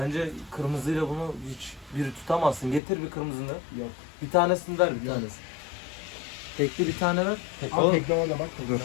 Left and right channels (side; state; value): right; drops out; at 2.8 s